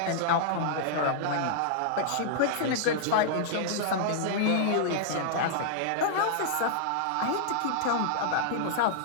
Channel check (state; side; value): different; both; correlation -0.01